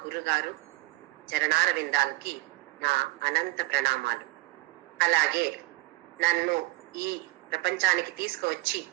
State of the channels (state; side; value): quieter; left; 21.1 dB